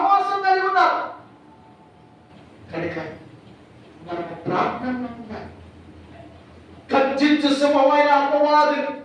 కలిగి ఉన్నారు. కనుక మనకు ప్రార్థనలో ఉండాలి. గర్జించు సింహమైన అపవాదిని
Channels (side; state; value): both; identical; correlation 1.00